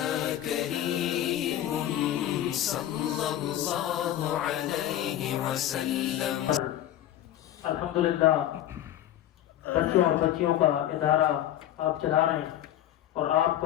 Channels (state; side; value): quieter; right; 12.4 dB